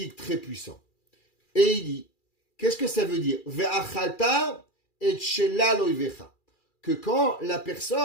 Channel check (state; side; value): late; right; 2.4 ms